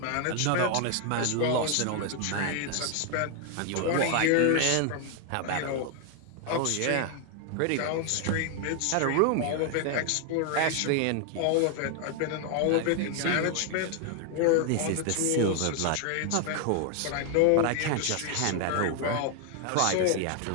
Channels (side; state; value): both; different; correlation 0.00